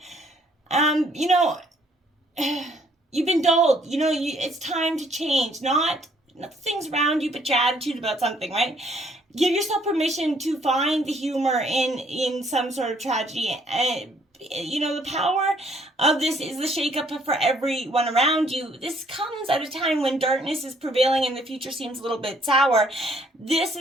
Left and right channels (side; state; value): both; normal; correlation 0.65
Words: You know, you've been dulled. You know, it's time to change. Not the things around you, but your attitude about something, right? Give yourself permission to find the humor in some sort of tragedy. You know, the power of this is the shakeup for everyone around you. This comes at a time when darkness is prevailing and the future seems a little bit sour. This